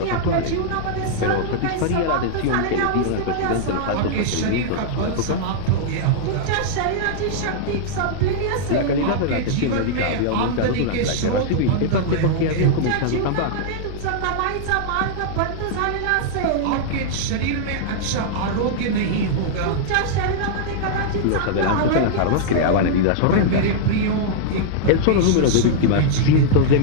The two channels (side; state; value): both; different; correlation -0.01